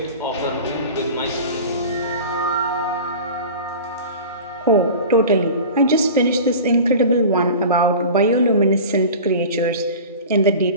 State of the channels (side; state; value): both; inverted; correlation -0.36